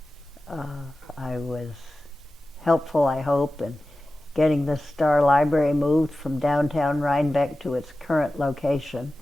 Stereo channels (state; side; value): normal; both; correlation 0.95